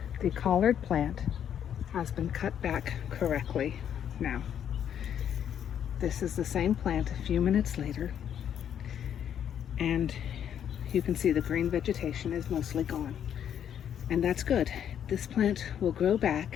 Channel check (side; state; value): right; quieter; 9.2 dB